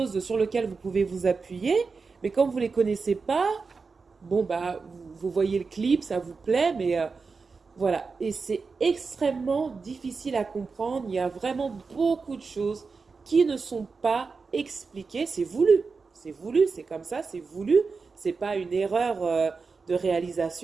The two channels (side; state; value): left; quieter; 4.7 dB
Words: sur lequel vous pouvez vous appuyer. Mais quand vous les connaissez pas, bon, bah, vous voyez le clip, ça vous plaît, mais voilà. Et c'est extrêmement difficile à comprendre. Il y a vraiment beaucoup de choses qui ne sont pas expliquées. C'est voulu. C'est voulu, c'est comme ça, c'est voulu. C'est pas une erreur de